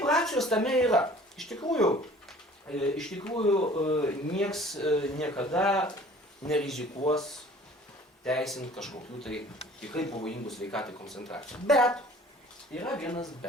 racijos tame yra. Iš tikrųjų, nieks niekada nerizikuos teisint kažkokių tai tikrai pavojingų sveikatai koncentracijų. Bet, yra vienas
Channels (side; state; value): both; normal; correlation 0.50